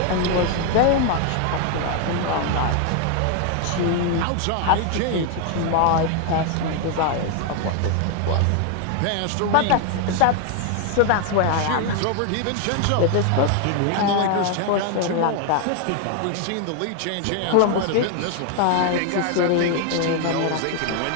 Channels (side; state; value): both; different; correlation 0.01